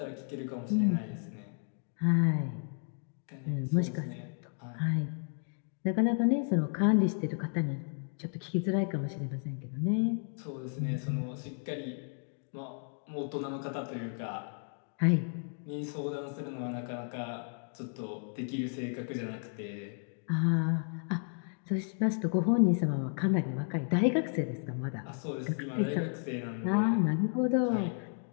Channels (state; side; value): silent; right; 56 dB below the other